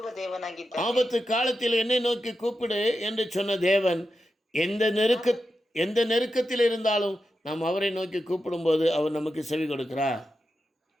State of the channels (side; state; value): both; normal; correlation 0.89